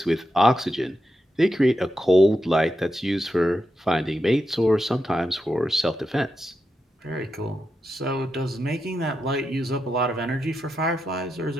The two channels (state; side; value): normal; both; correlation 0.87